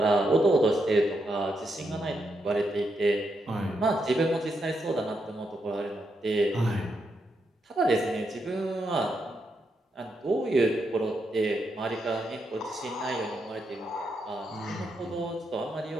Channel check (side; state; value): both; normal; correlation 0.82